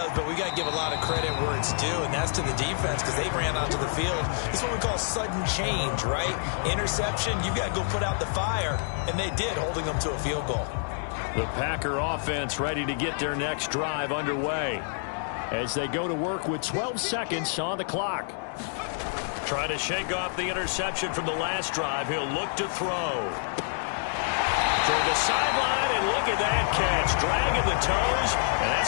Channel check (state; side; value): silent; right; digital silence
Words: but we got to give a lot of credit where it's due, and that's to the defense because they ran onto the field. It's what we call sudden change, right? Interception, you got to go put out the fire, and they did, holding them to a field goal. The Packer offense ready to get their next drive underway as they go to work with 12 seconds on the clock. Trying to shake off the interception from the last drive. He'll look to throw. Toward the sideline, and look at that catch. Dragging the toes, and